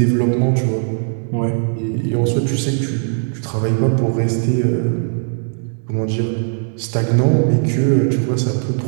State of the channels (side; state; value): left; silent; 67 dB below the other